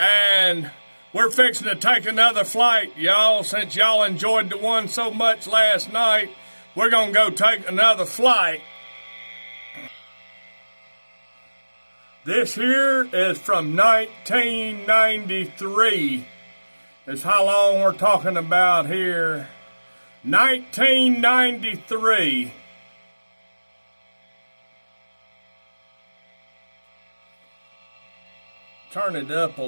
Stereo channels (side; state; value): both; inverted; correlation -1.00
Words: we're fixing to take another flight, y'all. Since y'all enjoyed the one so much last night, we're going to go take another flight. This here is from 1993. Is how long we're talking about here. 1993. Turn it up a